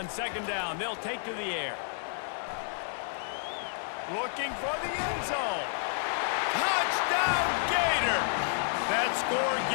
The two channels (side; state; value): right; silent; digital silence